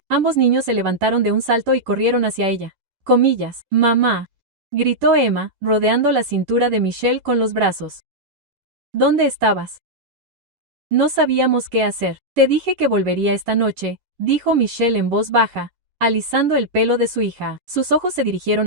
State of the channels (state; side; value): late; left; 11 ms